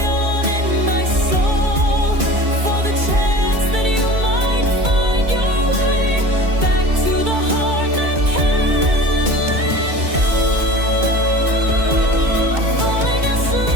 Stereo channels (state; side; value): late; left; 2.3 ms